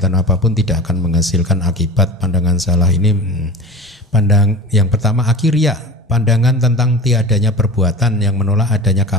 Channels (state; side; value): normal; both; correlation 0.34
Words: apapun tidak akan menghasilkan akibat. Pandangan salah ini yang pertama akhiria, pandangan tentang tiadanya perbuatan yang menolak adanya